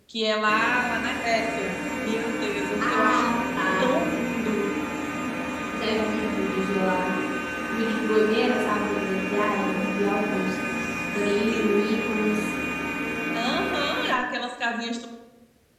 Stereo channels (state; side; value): identical; both; correlation 1.00